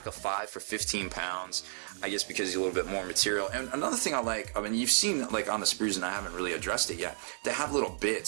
of 5 for 15 pounds. I guess because he's a little bit more material. And another thing I like, I mean, you've seen like on the sprues, and I haven't really addressed it yet, they have little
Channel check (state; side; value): silent; left; digital silence